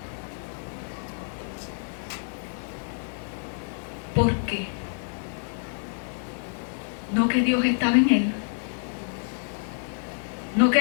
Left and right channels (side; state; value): right; silent; digital silence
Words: ¿Por qué? No que Dios estaba en él. No que